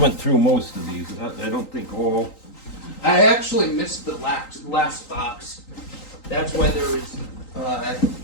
through most of these. I don't think all. I actually missed the last box. That's why there is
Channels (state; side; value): late; right; 3.8 ms